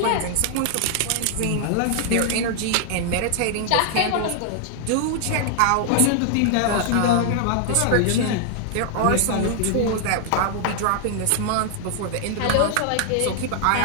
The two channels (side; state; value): both; different; correlation 0.00